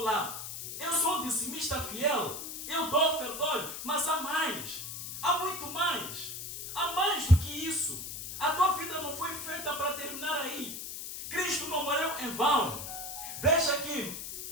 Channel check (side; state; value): left; noise; hiss, 7 dB below the sound